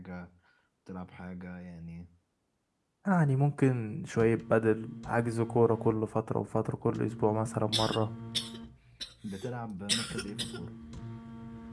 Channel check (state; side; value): identical; both; correlation 1.00